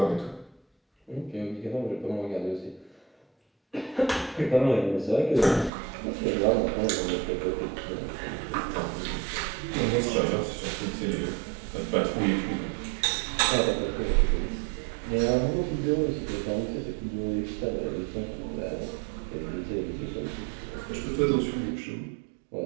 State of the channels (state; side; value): drops out; left; at 5.7 s